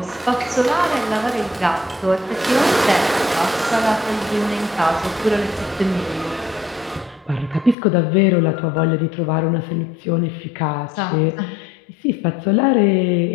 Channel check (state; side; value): drops out; right; at 7.8 s